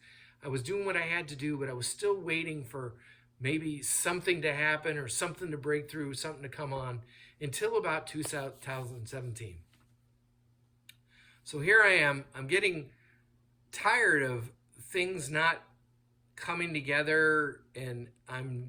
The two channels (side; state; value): both; identical; correlation 1.00